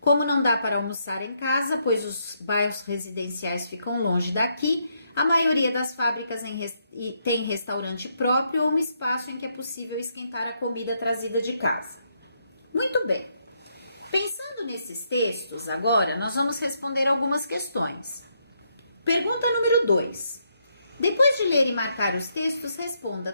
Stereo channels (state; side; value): inverted; both; correlation -0.76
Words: não dá para almoçar em casa, pois os bairros residenciais ficam longe daqui, a maioria das fábricas tem restaurante próprio ou um espaço em que é possível esquentar a comida trazida de casa. Muito bem. Pensando nesses textos, agora nós vamos responder algumas questões. Pergunta número 2. Depois de ler e marcar os textos, responda: